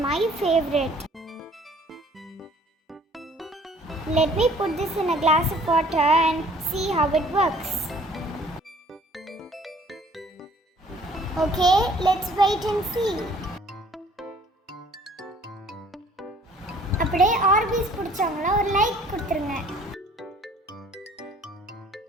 my favourite. Let me put this in a glass of water and see how it works. Okay, let's wait and see. அப்படியே ஆர்பிஸ் பிடிச்சவங்கள ஒரு லைக் கொடுத்துருங்க.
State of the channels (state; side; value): normal; both; correlation 0.55